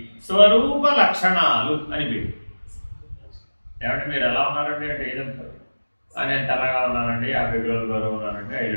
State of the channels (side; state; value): both; inverted; correlation -1.00